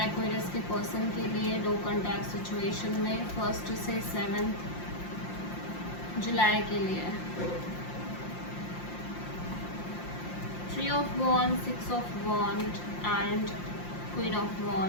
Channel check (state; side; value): late; right; 5.7 ms